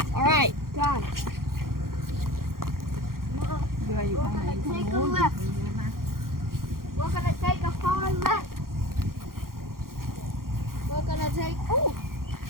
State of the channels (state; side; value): late; left; 0.92 ms